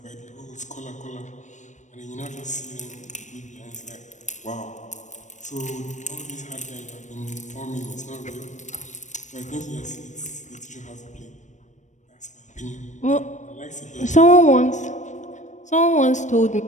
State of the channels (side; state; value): right; late; 0.35 ms